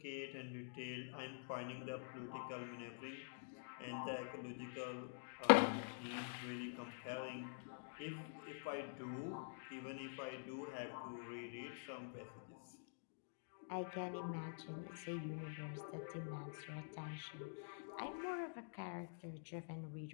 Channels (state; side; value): silent; right; digital silence